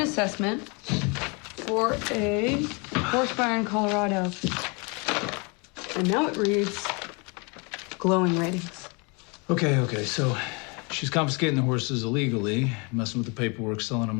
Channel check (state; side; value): quieter; right; 31.4 dB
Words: for a horse barn in Colorado. And now it reads glowing ratings. Okay, so she's confiscating the horses illegally, messing with the paperwork, selling